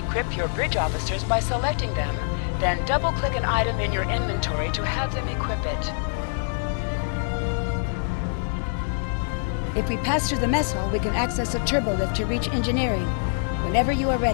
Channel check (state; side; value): silent; right; 58 dB below the other